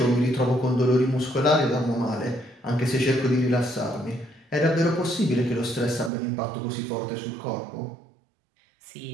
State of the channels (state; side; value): drops out; left; at 6.1 s